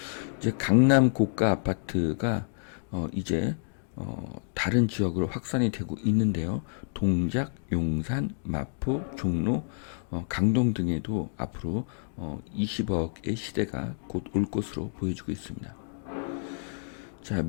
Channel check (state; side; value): silent; right; digital silence